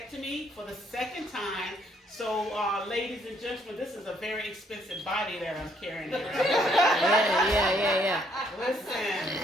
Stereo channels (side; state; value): both; normal; correlation 0.68